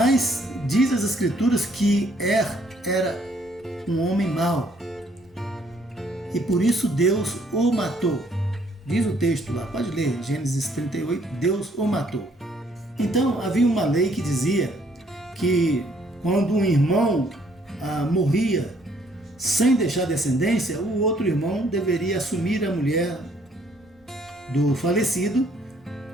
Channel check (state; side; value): normal; both; correlation 0.65